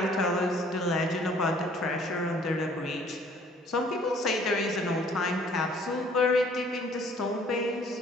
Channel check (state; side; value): normal; both; correlation 0.57